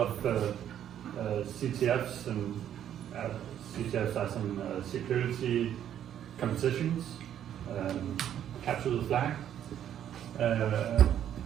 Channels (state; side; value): quieter; left; 10.3 dB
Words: CTFs, and CTFs are some security competitions, capture the flag.